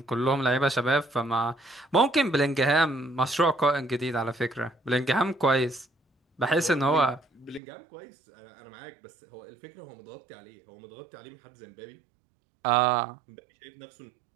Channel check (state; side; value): drops out; left; at 7.6 s